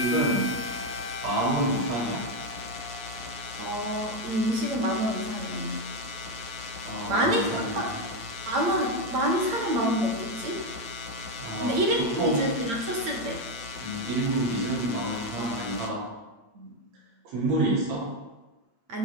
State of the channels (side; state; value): left; late; 8.8 ms